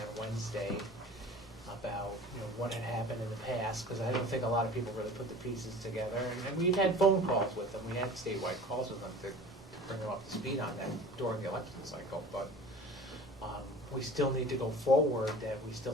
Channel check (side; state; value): both; normal; correlation 0.41